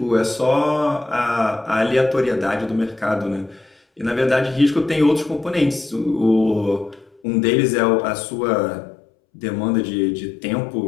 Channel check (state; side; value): drops out; right; at 7.2 s